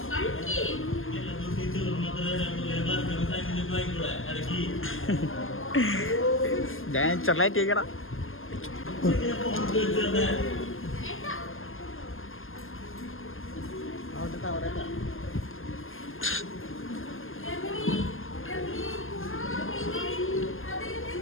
ഞാൻ ചെറുതായിട്ട് കേൾക്കണം.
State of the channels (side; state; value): right; late; 0.60 ms